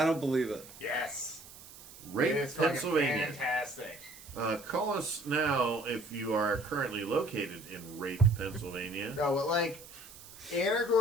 don't believe it. Yes. Rape, It is fucking Pennsylvania. fantastic. Call us now if you are currently located in Rape, Pennsylvania. No, but like,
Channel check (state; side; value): noise; right; hiss, 18 dB below the sound